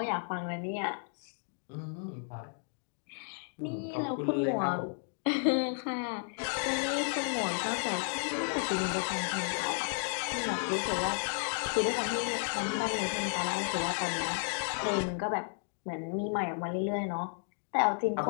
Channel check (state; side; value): silent; right; 56 dB below the other